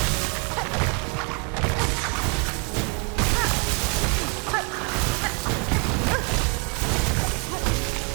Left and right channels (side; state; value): left; quieter; 33.5 dB